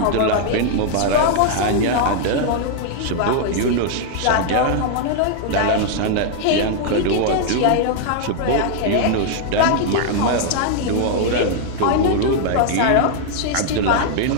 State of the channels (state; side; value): different; both; correlation 0.00